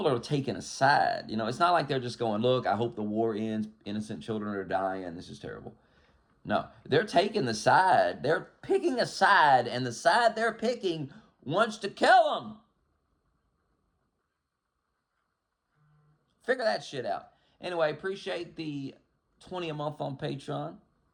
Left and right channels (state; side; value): identical; both; correlation 1.00